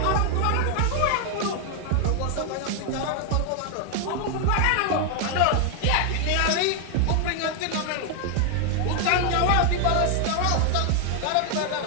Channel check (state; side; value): different; both; correlation 0.00